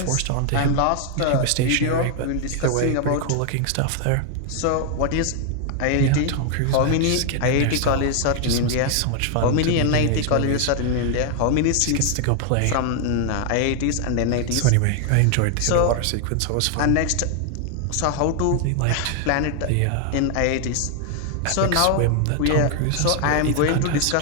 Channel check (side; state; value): both; different; correlation 0.00